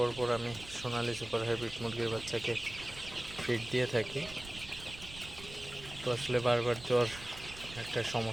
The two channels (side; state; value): right; noise; rumble, 15 dB below the sound